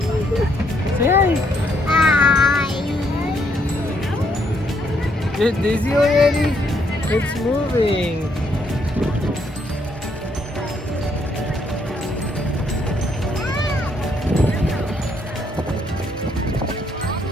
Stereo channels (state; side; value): normal; both; correlation 0.72